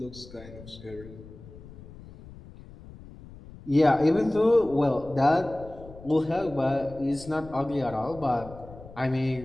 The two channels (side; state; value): left; noise; rumble, 18 dB below the sound